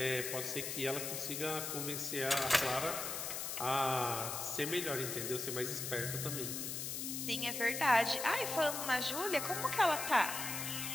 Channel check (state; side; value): noise; left; hiss, 4 dB below the sound